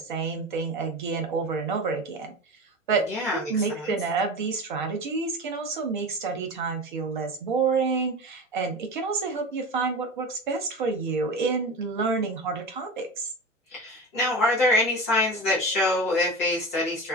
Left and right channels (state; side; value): normal; both; correlation 0.28